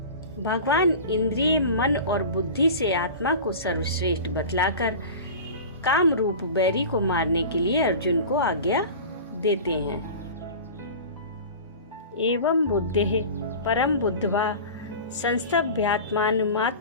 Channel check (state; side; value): inverted; both; correlation -0.34